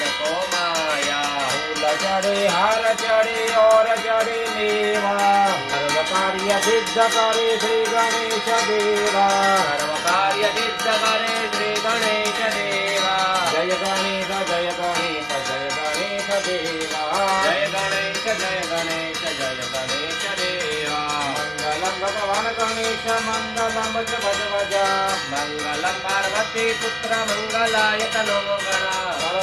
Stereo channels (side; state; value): both; identical; correlation 1.00